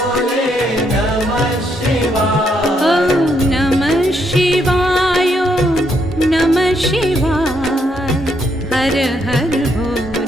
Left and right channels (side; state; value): both; normal; correlation 0.75